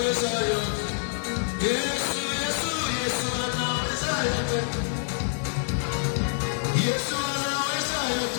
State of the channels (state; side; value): silent; right; 60 dB below the other